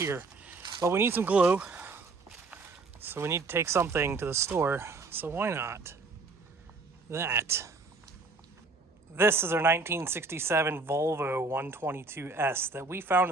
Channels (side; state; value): left; quieter; 3.6 dB